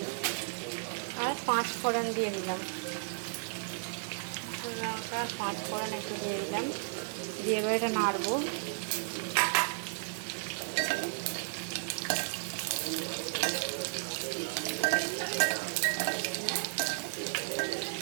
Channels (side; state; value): left; silent; 55 dB below the other